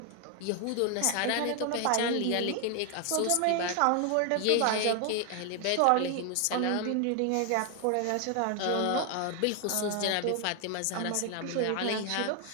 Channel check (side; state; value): both; different; correlation 0.00